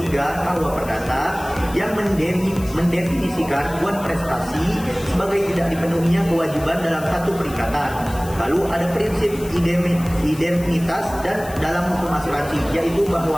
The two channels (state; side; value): noise; left; hiss, 17 dB below the sound